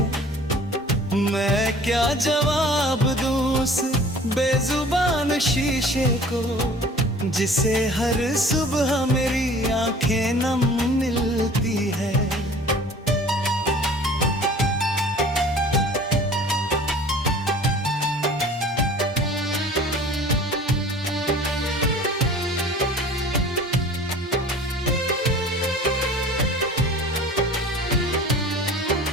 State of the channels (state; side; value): normal; both; correlation 0.46